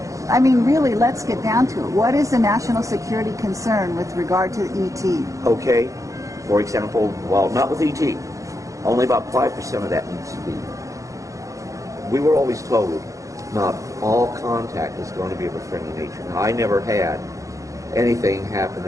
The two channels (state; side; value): late; left; 0.16 ms